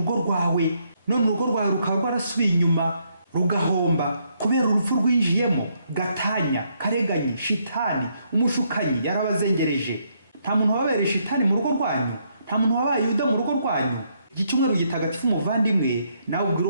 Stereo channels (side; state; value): both; inverted; correlation -0.74